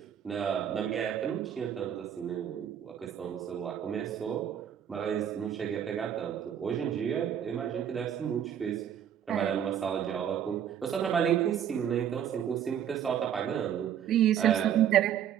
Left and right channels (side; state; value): left; quieter; 9.4 dB